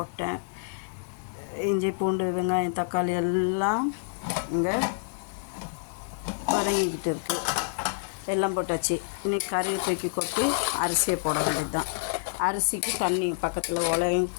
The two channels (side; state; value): right; silent; 57 dB below the other